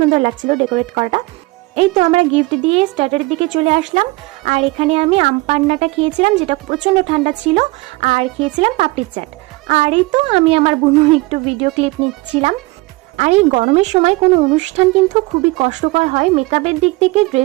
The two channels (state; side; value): quieter; left; 22.6 dB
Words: লাগছিল ডেকোরেট করাটা। এই তো আমরা গিফট দিয়ে স্টার্টারের দিকে চলে আসলাম। আর এখানে আমি আম পান্নাটা খেয়েছিলাম, যেটা প্রচণ্ড ঠান্ডা ছিল, আর খেয়েছিলাম পাপড়ির চাট। আর এই তো আমি আমার বোন একটু ভিডিও ক্লিপ নিচ্ছিলাম। আর এই গরমের সময় কোনো অনুষ্ঠান কিন্তু খুবই কষ্টকর হয়, মেকআপের দিক থেকে,